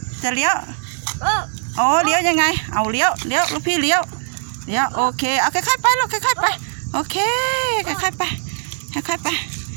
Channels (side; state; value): left; silent; digital silence